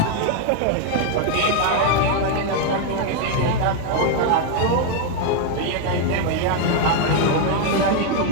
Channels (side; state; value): both; different; correlation 0.00